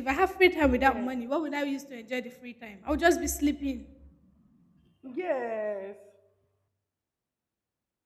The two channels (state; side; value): identical; both; correlation 1.00